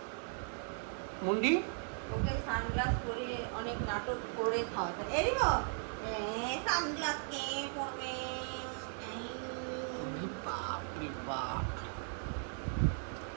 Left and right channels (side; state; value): left; silent; 53 dB below the other